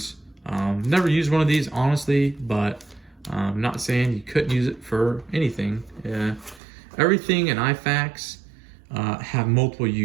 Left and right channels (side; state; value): left; drops out; at 6.6 s